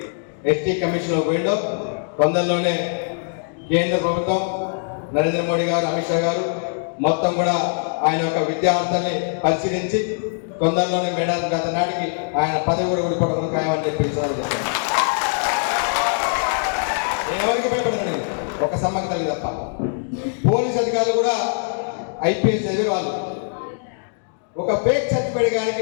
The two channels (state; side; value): silent; right; digital silence